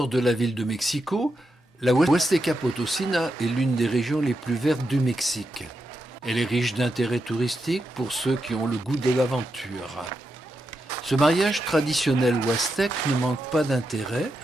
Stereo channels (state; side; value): normal; both; correlation 0.86